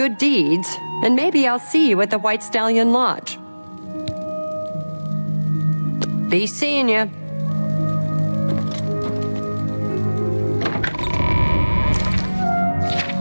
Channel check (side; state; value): both; inverted; correlation -1.00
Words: deeds, and maybe I'll see you at the White Stallion Lodge. Be seeing you.